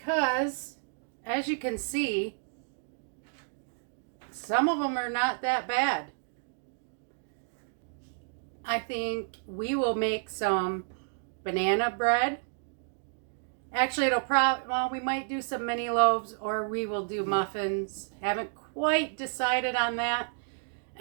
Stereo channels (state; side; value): silent; left; digital silence